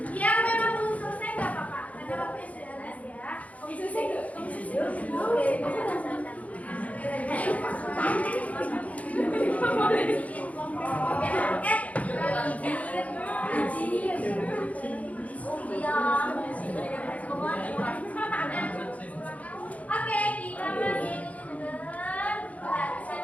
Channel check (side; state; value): right; late; 0.069 ms